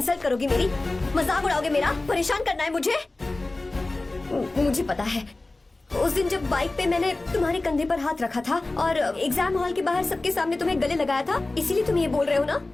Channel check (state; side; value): quieter; right; 3.0 dB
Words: करोगे मेरी? मजाक उड़ाओगे मेरा? परेशान करना है मुझे? मुझे पता है, उस दिन जब बाइक पे मैंने तुम्हारे कंधे पर हाथ रखा था और एग्जाम हॉल के बाहर सबके सामने तुम्हें गले लगाया था, इसीलिए तुम ये बोल रहे हो ना?